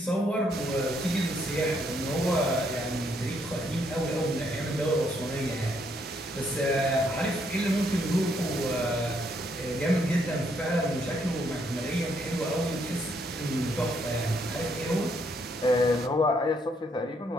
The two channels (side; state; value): both; normal; correlation 0.72